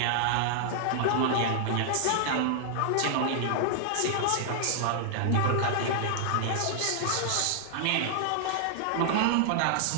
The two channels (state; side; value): different; both; correlation -0.01